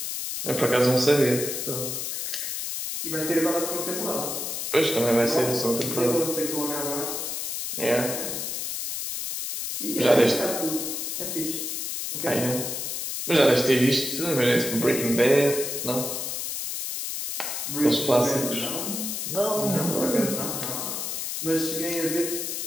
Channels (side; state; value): left; noise; hiss, 3 dB below the sound